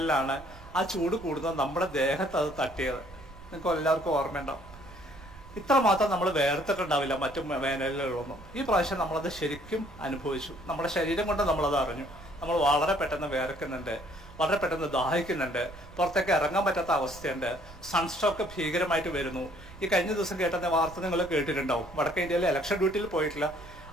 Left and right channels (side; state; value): right; noise; rumble, 18 dB below the sound